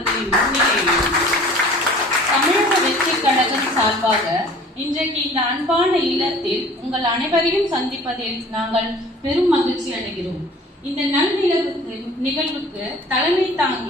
முன்னிலையில் தமிழக வெற்றி கழகம் சார்பாக இன்றைக்கு இந்த அன்பான இல்லத்தில் உங்கள் அனைவரையும் சந்திப்பதில் நாங்கள் பெரும் மகிழ்ச்சி அடைகிறோம். இந்த நல் நிகழ்வுக்கு தலைமை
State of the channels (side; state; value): both; normal; correlation 0.48